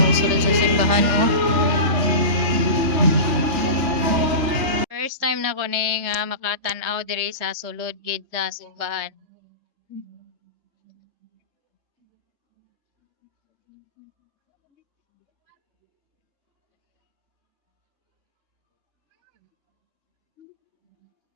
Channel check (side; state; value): left; late; 3.2 ms